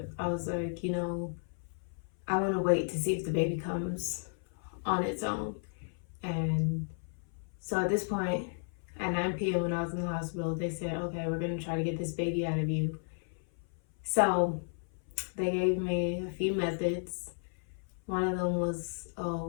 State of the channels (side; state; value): right; silent; 55 dB below the other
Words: I was like, I want to wait to see if the baby comes on its own. And so at this point, at 9 p.m. when I was in the hospital, they said, okay, we're going to try to get this baby out of you. So they gave me a few methods. One of them was a